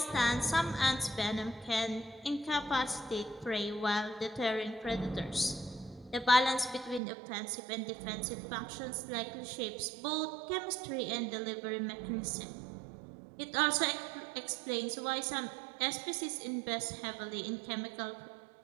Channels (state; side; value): drops out; left; at 7.0 s